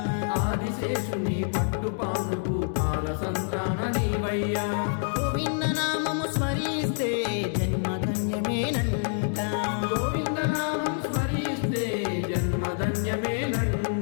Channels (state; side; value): silent; right; digital silence